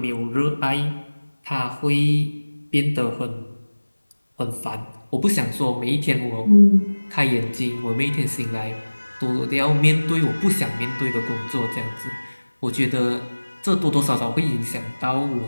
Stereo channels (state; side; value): inverted; both; correlation -1.00